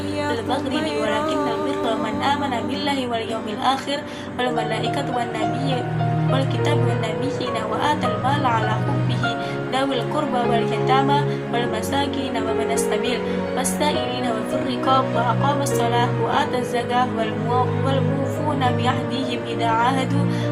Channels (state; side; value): identical; both; correlation 1.00